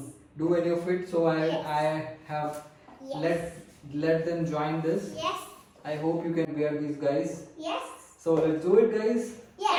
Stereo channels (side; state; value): both; identical; correlation 1.00